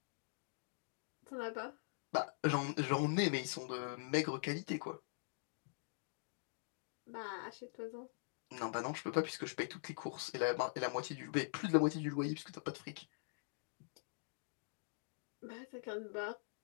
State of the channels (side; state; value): right; silent; digital silence